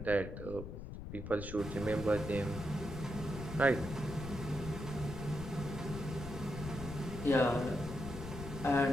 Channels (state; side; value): noise; left; rumble, 8 dB below the sound